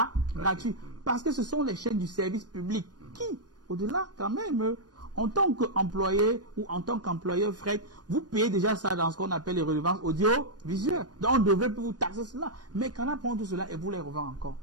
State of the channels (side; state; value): left; late; 0.69 ms